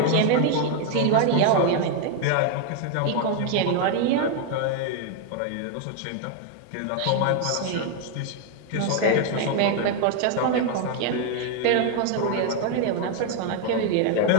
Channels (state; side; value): different; both; correlation 0.01